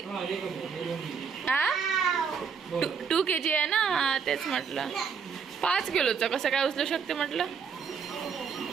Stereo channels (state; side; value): quieter; left; 6.2 dB